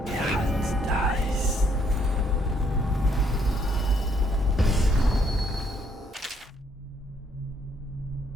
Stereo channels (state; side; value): normal; both; correlation 0.69